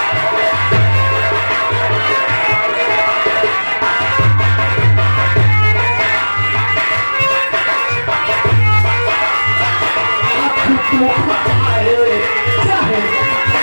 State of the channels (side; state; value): both; inverted; correlation -1.00